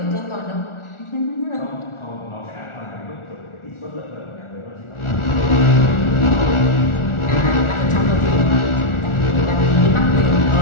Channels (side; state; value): right; late; 1.4 ms